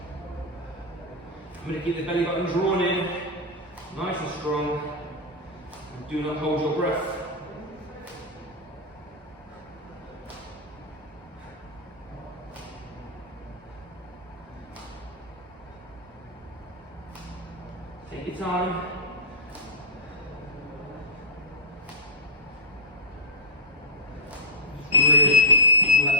I'm going to keep the belly button drawn in, nice and strong, and do not hold your breath. Take your time.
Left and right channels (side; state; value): both; normal; correlation -0.10